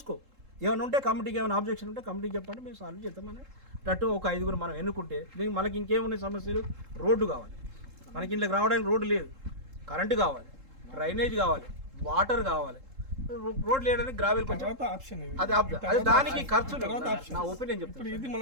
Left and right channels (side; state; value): left; late; 3.7 ms